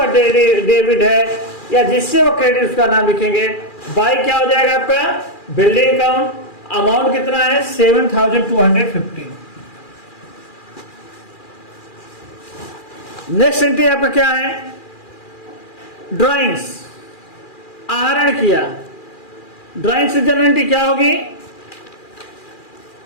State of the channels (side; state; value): right; late; 2.4 ms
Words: डेबिट है या जिससे वो क्रेडिट, उसका नाम लिखेंगे। बाय क्या हो जाएगा आपका, बिल्डिंग अकाउंट। अमाउंट कितना है, 7250। नेक्स्ट एंट्री आपका क्या है, ड्राइंग्स, आहरण किया। ड्राइंग्स जनरल एंट्री क्या होगी,